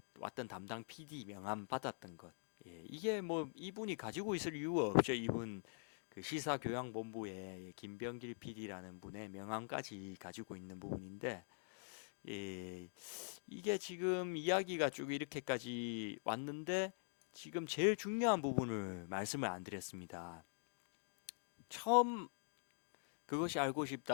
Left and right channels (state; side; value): silent; right; digital silence